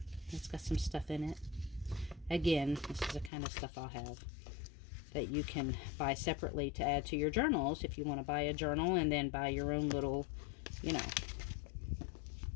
it's got some stuff in it. Again, this is the kind of stuff I'll have that you can buy separately to add to your journals if you want to buy a journal and then buy your own little, you know,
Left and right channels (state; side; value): drops out; right; at 3.3 s